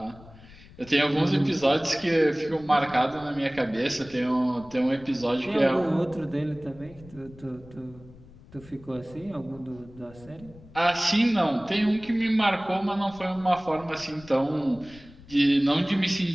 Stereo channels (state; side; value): noise; left; rumble, 22 dB below the sound